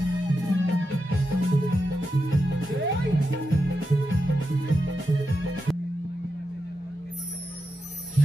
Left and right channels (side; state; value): both; normal; correlation 0.88